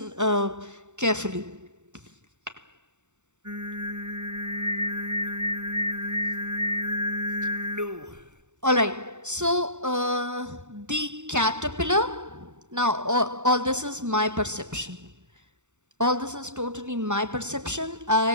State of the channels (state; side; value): late; left; 0.84 ms